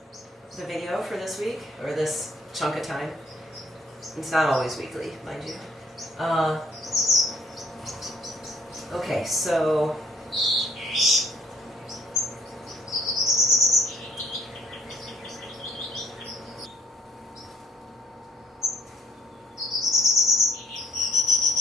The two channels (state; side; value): normal; both; correlation 0.65